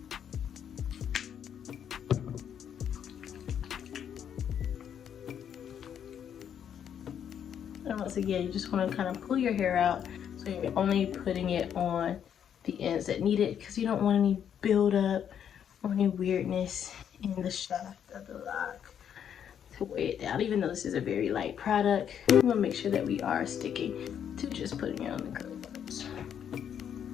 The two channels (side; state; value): right; quieter; 8.8 dB